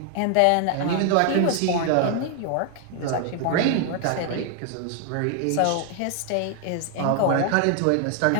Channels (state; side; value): different; both; correlation 0.00